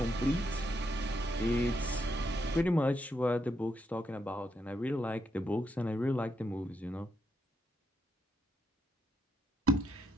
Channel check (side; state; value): both; normal; correlation 0.79